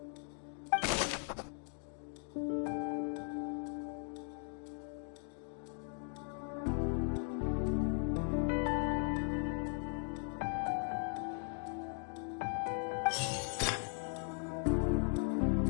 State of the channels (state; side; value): silent; right; 52 dB below the other